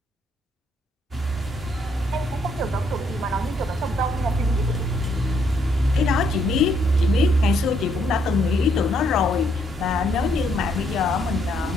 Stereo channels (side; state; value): both; normal; correlation 0.72